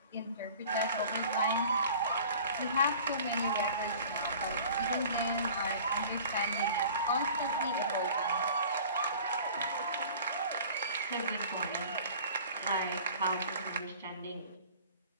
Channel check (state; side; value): inverted; both; correlation -0.45